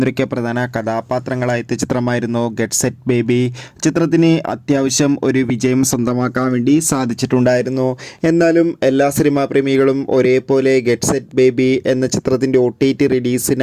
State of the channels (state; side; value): identical; both; correlation 1.00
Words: പ്രധാന കഥാപാത്രങ്ങളായ ചിത്രമായിരുന്നു ഗെറ്റ് സെറ്റ് ബേബി. ചിത്രത്തിന് അത്യാവശ്യം ഒരു വിജയം സ്വന്തമാക്കാൻ വേണ്ടി സാധിച്ചിട്ടുണ്ടായിരുന്നു. എന്നാലും എല്ലാ സിനിമാ പ്രേമികളും ഒരേപോലെ ഗെറ്റ് സെറ്റ് ബേബി എന്ന ചിത്രത്തിൻ്റെ OTT